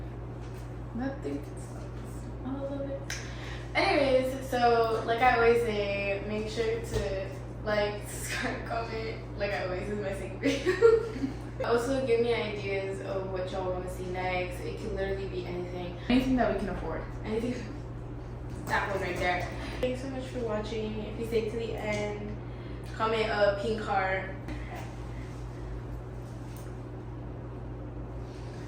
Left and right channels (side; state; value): both; identical; correlation 1.00